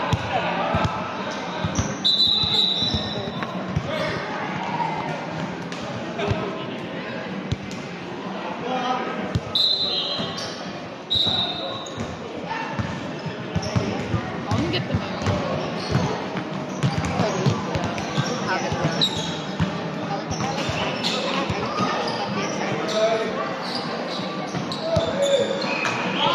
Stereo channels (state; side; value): identical; both; correlation 1.00